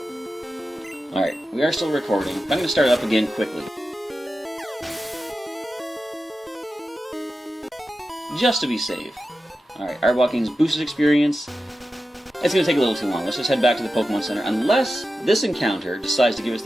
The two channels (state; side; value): normal; both; correlation 0.92